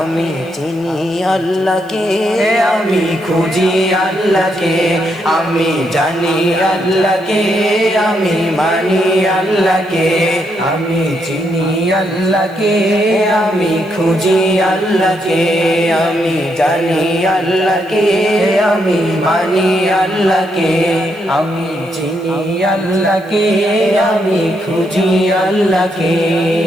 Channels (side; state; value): left; noise; hiss, 29 dB below the sound